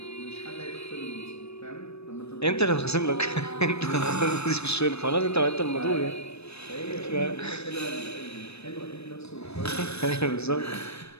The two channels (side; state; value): right; late; 0.79 ms